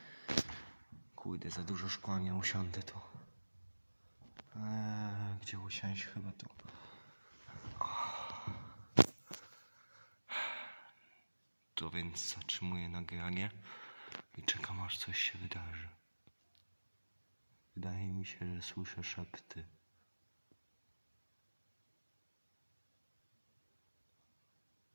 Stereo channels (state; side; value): inverted; both; correlation -1.00